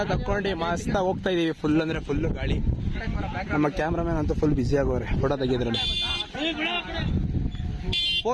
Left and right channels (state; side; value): identical; both; correlation 1.00